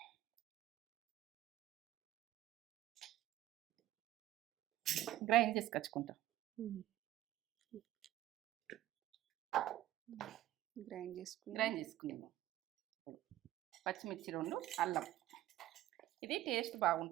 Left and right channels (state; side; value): quieter; left; 14.4 dB